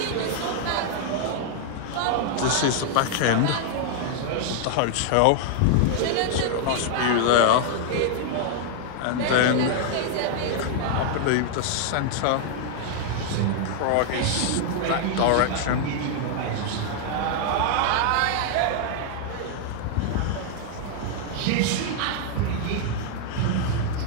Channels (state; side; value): different; both; correlation -0.01